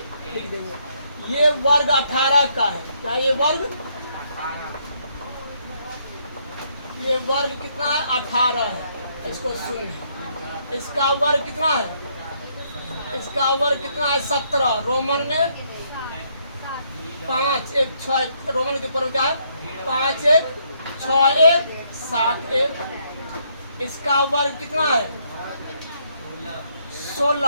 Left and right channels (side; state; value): both; inverted; correlation -0.72